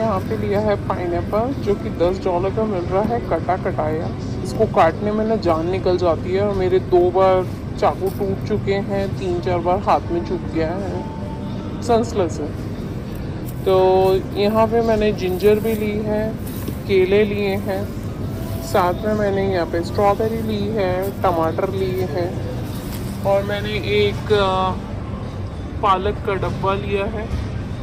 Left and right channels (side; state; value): both; identical; correlation 1.00